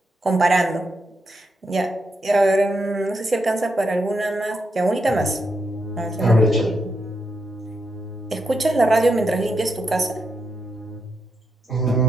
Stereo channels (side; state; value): both; normal; correlation 0.82